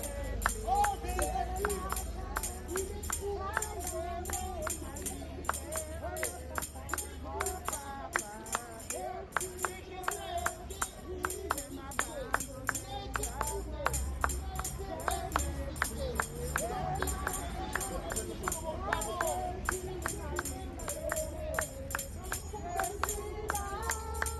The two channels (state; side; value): identical; both; correlation 1.00